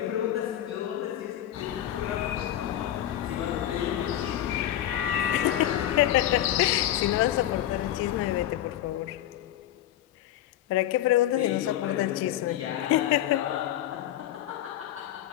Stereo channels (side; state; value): right; quieter; 12.5 dB